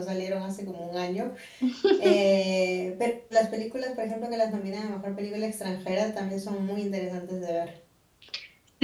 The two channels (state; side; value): identical; both; correlation 1.00